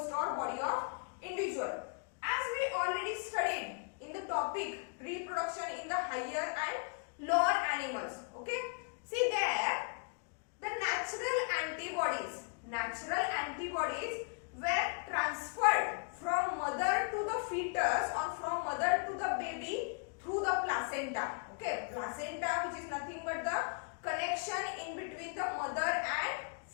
or body of individual. As we already studied in the topic reproduction in the higher and lower animals, okay, see there the natural antibodies were transferred from mother to the fetus or from mother to the baby through the placenta, okay, placenta which is nothing but the connection in between the mother and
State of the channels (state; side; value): quieter; right; 38.6 dB